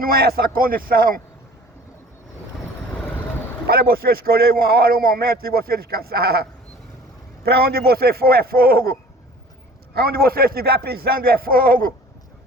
é essa condição para você escolher uma hora, um momento de você descansar. Para onde você for é fogo. Aonde você estiver pisando é fogo.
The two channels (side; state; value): both; normal; correlation 0.47